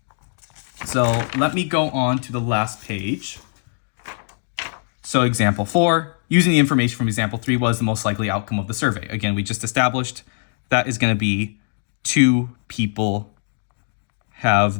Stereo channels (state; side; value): silent; right; digital silence